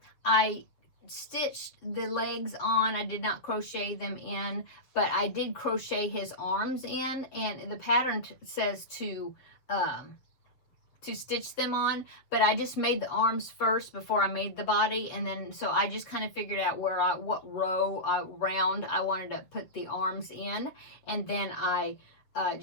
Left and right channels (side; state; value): right; late; 7.4 ms